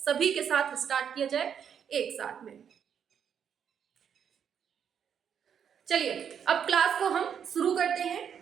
सभी के साथ स्टार्ट किया जाए एक साथ में। चलिए अब क्लास को हम शुरू करते हैं।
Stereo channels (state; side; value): quieter; left; 8.0 dB